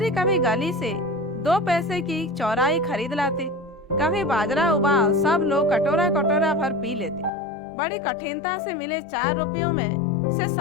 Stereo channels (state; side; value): drops out; right; at 7.3 s